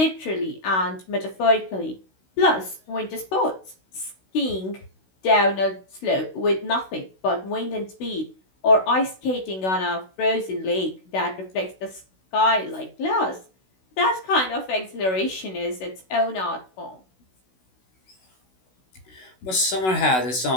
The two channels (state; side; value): late; right; 16 ms